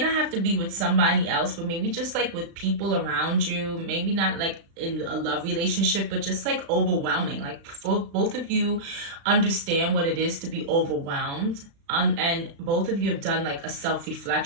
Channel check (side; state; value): left; late; 36 ms